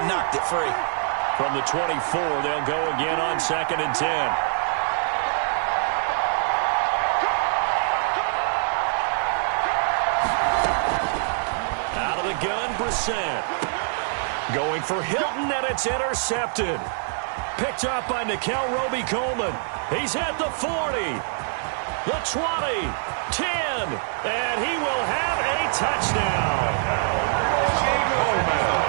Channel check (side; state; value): left; silent; digital silence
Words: knocked it free. From the 24, they'll go again on 2nd and 10. Out of the gun, Brissett. Going for Hilton, and it's intercepted. Picked up by Nikel Roby-Coleman. He's at the 40, the 20, 10, and he will have a touchdown.